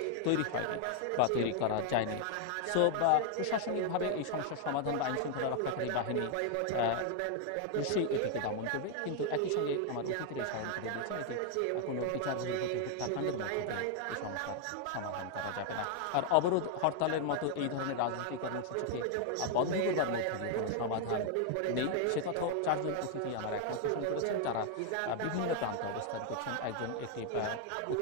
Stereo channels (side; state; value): both; different; correlation 0.00